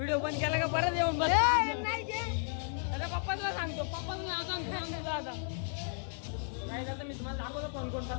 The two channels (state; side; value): silent; right; digital silence